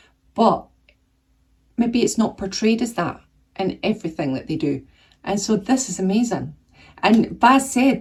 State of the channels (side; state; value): both; identical; correlation 1.00